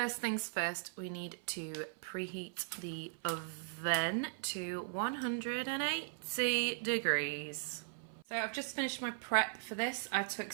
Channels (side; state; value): left; silent; 52 dB below the other